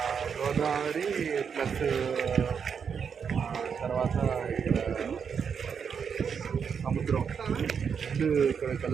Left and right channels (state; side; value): quieter; left; 6.7 dB